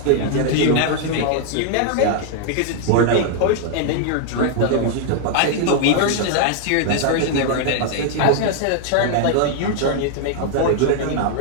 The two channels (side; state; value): both; different; correlation 0.00